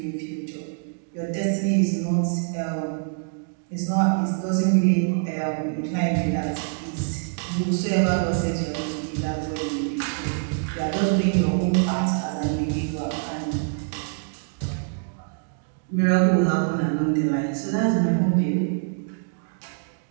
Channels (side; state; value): left; silent; digital silence